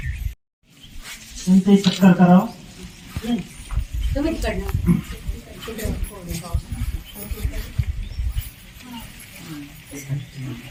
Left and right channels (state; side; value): identical; both; correlation 1.00